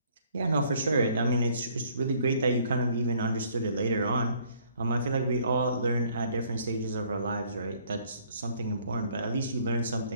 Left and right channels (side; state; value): both; inverted; correlation -0.61